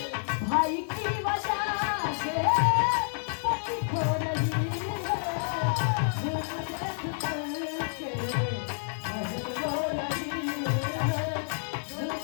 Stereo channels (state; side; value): silent; right; 58 dB below the other